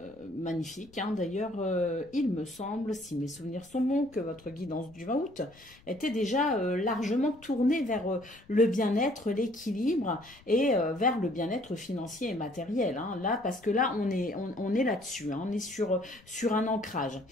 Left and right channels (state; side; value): noise; left; rumble, 26 dB below the sound